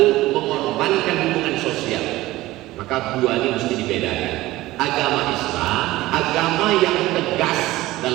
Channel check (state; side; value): quieter; left; 17.6 dB